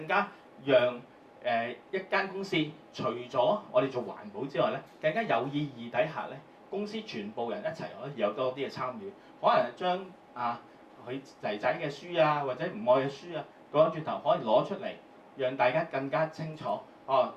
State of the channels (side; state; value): both; identical; correlation 1.00